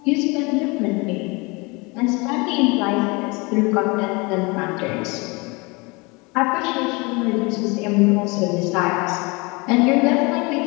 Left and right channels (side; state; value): right; quieter; 27.0 dB